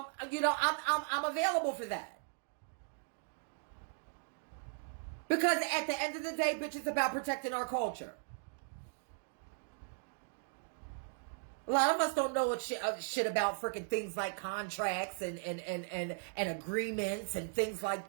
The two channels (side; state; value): left; silent; digital silence